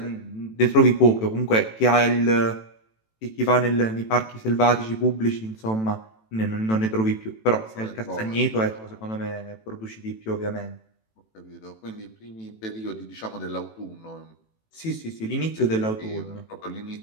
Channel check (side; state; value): right; late; 18 ms